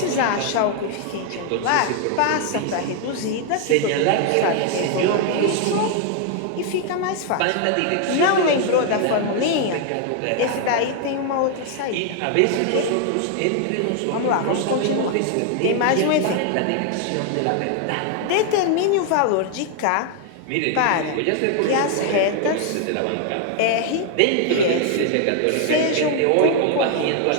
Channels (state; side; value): different; both; correlation 0.00